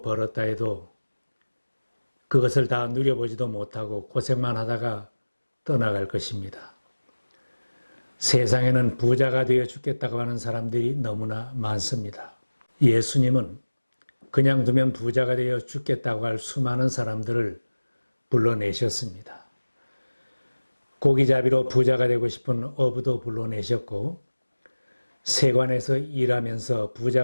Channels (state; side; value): inverted; both; correlation -1.00